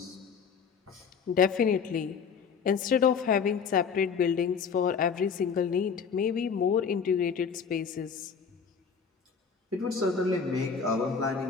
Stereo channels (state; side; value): quieter; right; 6.3 dB